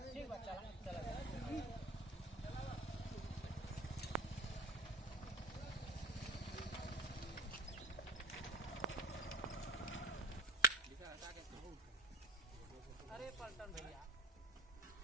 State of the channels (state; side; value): normal; both; correlation 0.33